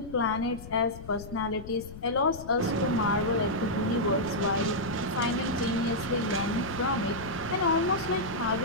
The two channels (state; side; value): noise; left; rumble, 14 dB below the sound